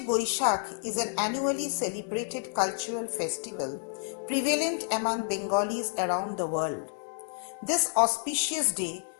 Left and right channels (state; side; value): silent; right; digital silence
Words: Boishakh is an annually celebrated cultural festival prevalent among Bengalis around the world. This auspicious day